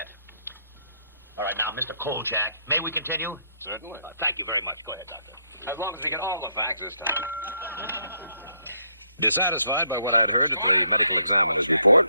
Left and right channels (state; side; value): inverted; both; correlation -0.74